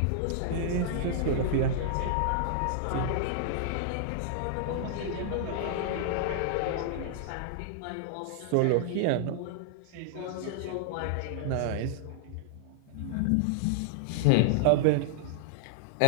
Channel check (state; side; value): different; both; correlation -0.01